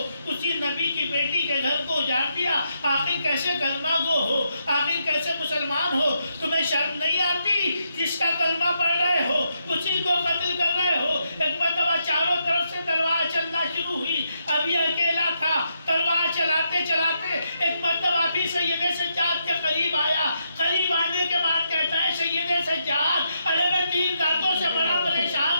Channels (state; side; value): inverted; both; correlation -0.79